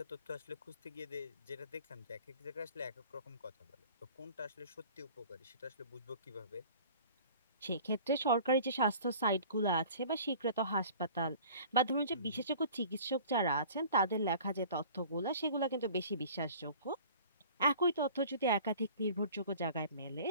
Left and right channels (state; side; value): inverted; both; correlation -0.46